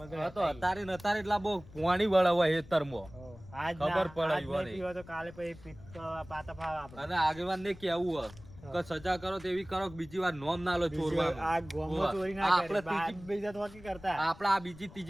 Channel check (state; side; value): noise; left; rumble, 19 dB below the sound